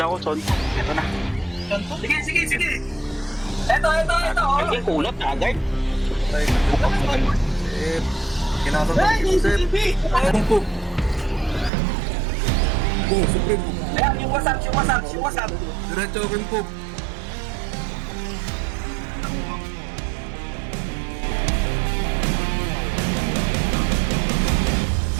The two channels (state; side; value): drops out; left; at 11.7 s